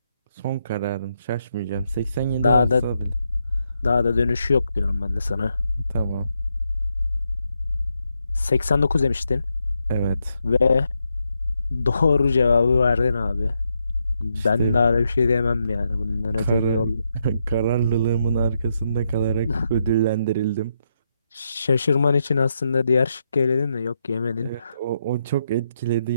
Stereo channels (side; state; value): both; inverted; correlation -0.81